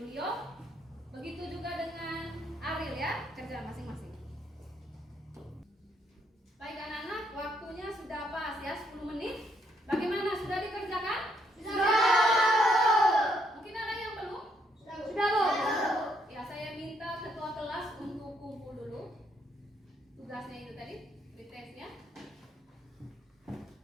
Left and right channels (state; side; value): normal; both; correlation 0.72